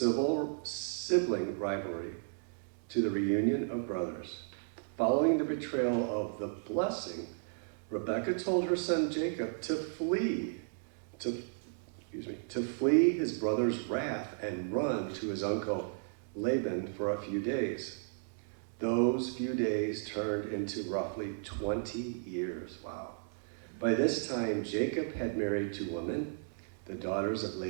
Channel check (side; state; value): left; silent; digital silence